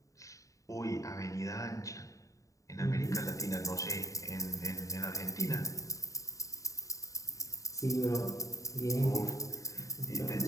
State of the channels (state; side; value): late; right; 0.16 ms